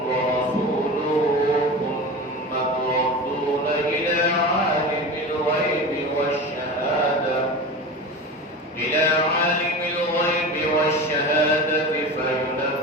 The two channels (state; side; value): normal; both; correlation 0.29